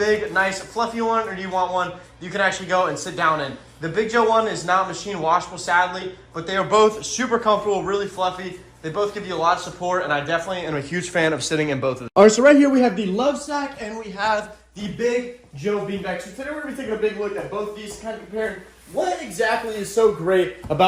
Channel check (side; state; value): both; identical; correlation 1.00